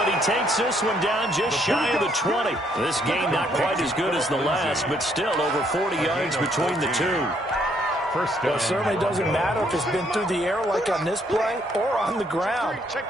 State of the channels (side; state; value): both; normal; correlation 0.69